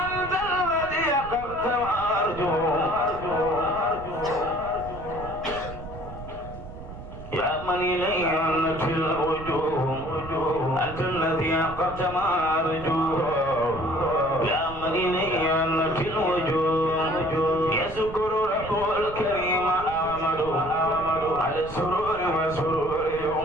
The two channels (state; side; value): noise; right; rumble, 13 dB below the sound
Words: الذي قلت وأرجو يا من إليه أنت الوجوه أنت الذي قلت ما أرجوه يا من إليه أنت الوجوه يذكر رب الكريم أحمد على السرور وسرور